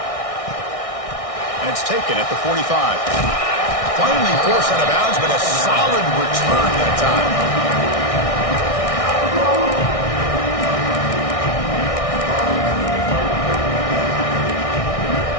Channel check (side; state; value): right; late; 1.6 ms